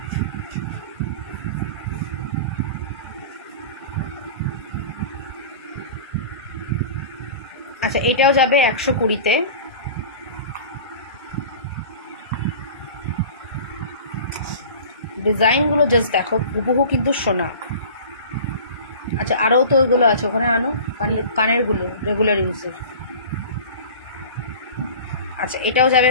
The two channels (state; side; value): inverted; both; correlation -0.39